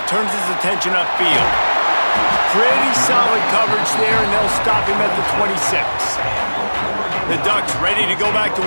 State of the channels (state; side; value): inverted; both; correlation -1.00